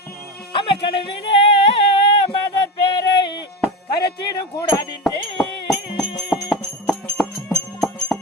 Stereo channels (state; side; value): normal; both; correlation 0.21